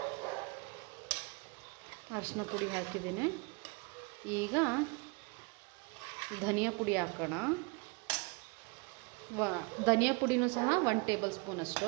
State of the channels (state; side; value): quieter; left; 31.1 dB